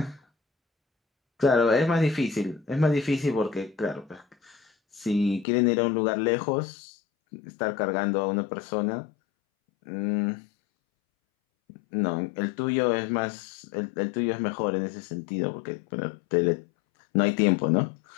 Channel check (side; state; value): right; drops out; at 5.5 s